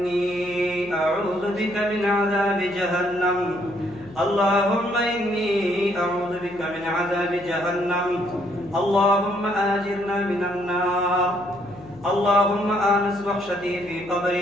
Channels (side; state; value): left; noise; hum, 21 dB below the sound